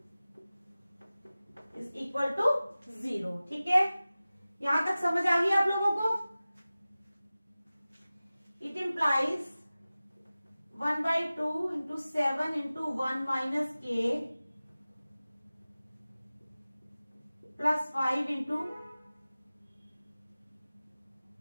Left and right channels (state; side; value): inverted; both; correlation -0.97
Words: इज इक्वल टू 0, ठीक है। यहां तक समझ आ गई आप लोगों को? It implies 1/2 into 7 into 1 minus k plus 5 into